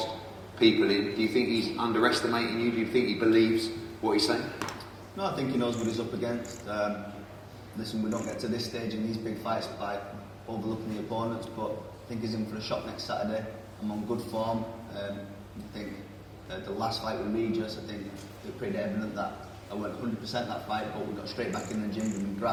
people in. Do you think he's underestimating you? Do you think he believes what he's saying? No, I think he knows what he's up against. Listen, we don't get to this stage in these big fights by overlooking the opponents, but I think he's in for a shot next Saturday. I'm on good form. I think the last fight with Regis, I think it was pretty evident that I went 100% that fight, but we got straight back in the gym, we've been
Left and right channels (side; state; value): both; identical; correlation 1.00